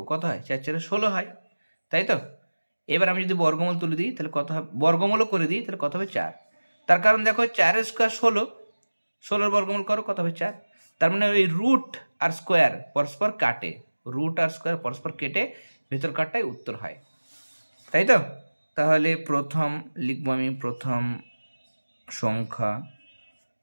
কত হয়? 4 4 16 হয়, তাই তো? এবার আমি যদি বর্গমূল তুলে দিই, তাহলে কত হবে? বর্গমূলও করে দিই, তাহলে কত হবে? 4। তার কারণ দেখো 4-এর স্কোয়ার 16, 16-এর বর্গমূল করো, কত হবে? 4। তার মানে ওই রুট আর স্কোয়ার পরস্পর কাটে, রুট আর স্কোয়ার পরস্পর কেটে ভেতর কাটটাই উত্তর হয়, তাই তো? তাহলে প্রথম লিখবো আমি প্রথম সংখ্যা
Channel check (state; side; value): inverted; both; correlation -1.00